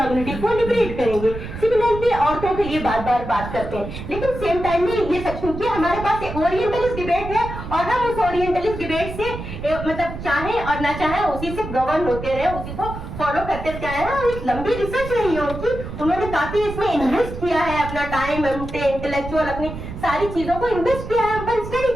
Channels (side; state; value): right; noise; rumble, 9 dB below the sound